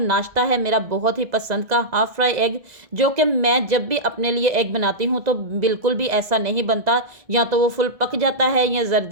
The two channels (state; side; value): late; left; 2.0 ms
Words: नाश्ता है मेरा बहुत ही पसंद का हाफ फ्राई एग, जो कि मैं जब भी अपने लिए एग बनाती हूँ तो बिल्कुल भी ऐसा नहीं बनता, या तो वो फुल पक जाता है या